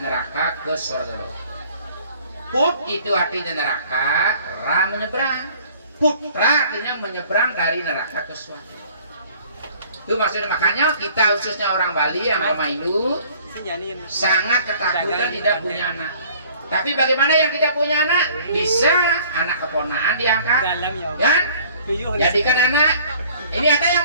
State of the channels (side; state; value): both; inverted; correlation -0.53